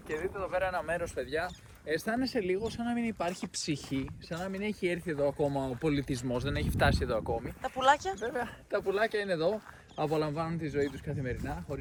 και δείτε εδώ πέρα ένα μέρος, παιδιά. Αισθάνεσαι λίγο σαν να μην υπάρχει ψυχή, σαν να μην έχει έρθει εδώ ακόμα ο πολιτισμός, δεν έχει φτάσει εδώ ακόμη. Τα πουλάκια. Βέβαια, τα πουλάκια είναι εδώ, απολαμβάνουν τη ζωή τους καθημερινά,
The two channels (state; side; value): identical; both; correlation 1.00